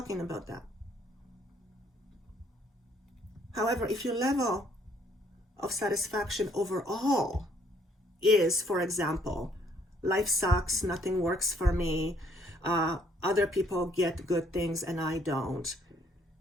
about that. However, if your level of satisfaction overall is, for example, life sucks, nothing works for me, other people get good things and I don't,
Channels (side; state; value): both; normal; correlation 0.66